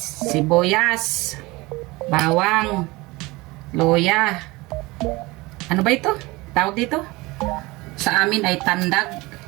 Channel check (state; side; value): quieter; left; 22.2 dB